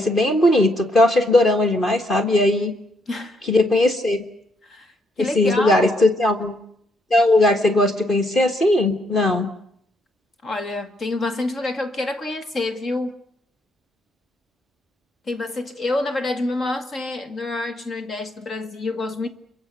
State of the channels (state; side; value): normal; both; correlation 0.74